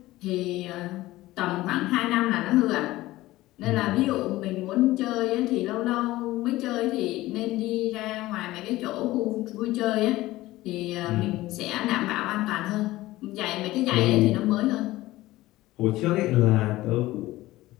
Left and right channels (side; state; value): right; quieter; 17.4 dB